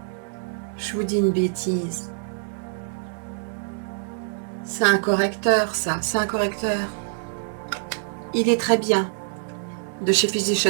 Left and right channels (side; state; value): left; silent; digital silence